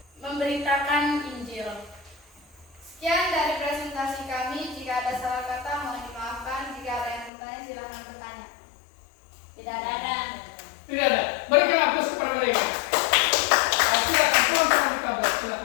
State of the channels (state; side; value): drops out; right; at 7.3 s